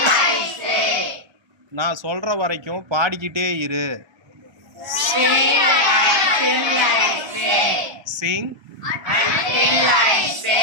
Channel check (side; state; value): left; late; 1.3 ms